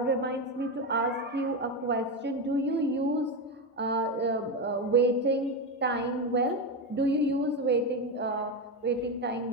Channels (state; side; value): normal; both; correlation 0.13